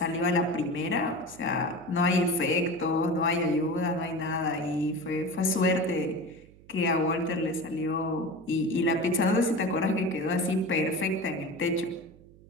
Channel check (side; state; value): right; noise; hum, 24 dB below the sound